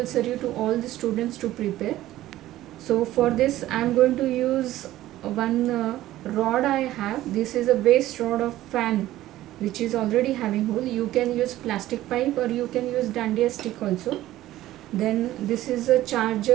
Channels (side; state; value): left; quieter; 14.9 dB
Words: to all the students to prepare. So for this I am going to use one rod I have. This is a waste rod of fan which is already having hole. You can use plastic pipe or you can use dandiya stick also. Then this is a